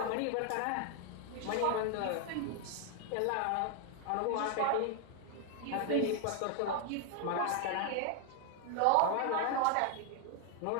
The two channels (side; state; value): both; different; correlation 0.00